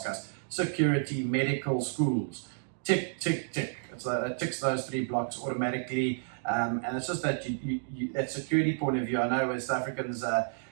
us. Security, medical, schools. Tick, tick, tick. It ticks those 3 blocks automatically. And it's just that that security point of view. I know West Africans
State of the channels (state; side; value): silent; left; digital silence